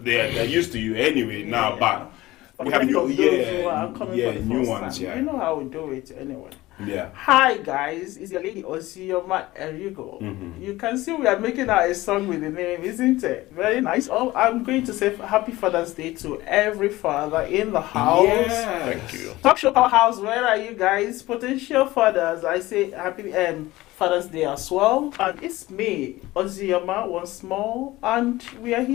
used to you anyway now, but we have new, new ones. Yeah, you know how we do it anyway. Yeah. Hi guys, it's your lady Osioma Erigo. You can see we are making out a song with the name, isn't it? Very nice. Oh, I'm going to say Happy Father's Day to every father in the house. Yes. Thank you. Talk Show Powerhouse, where are you guys? Potential fathers, I say Happy Father's Day as well. And it's me, Osioma, once more, and we are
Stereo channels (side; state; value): right; quieter; 18.1 dB